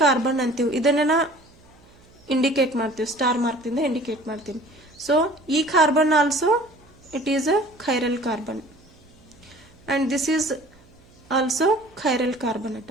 ಕಾರ್ಬನ್ ಅಂತೀವಿ. ಇದನ್ನ ಇಂಡಿಕೇಟ್ ಮಾಡ್ತೀವಿ, ಸ್ಟಾರ್ ಮಾರ್ಕ್ ಇಂದ ಇಂಡಿಕೇಟ್ ಮಾಡ್ತೀನಿ. ಸೊ ಈ carbon also it is a chiral carbon, and this is also chiral carbon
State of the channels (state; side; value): noise; right; hum, 28 dB below the sound